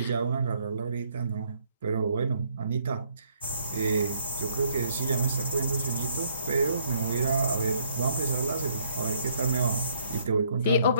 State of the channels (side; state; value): both; inverted; correlation -0.69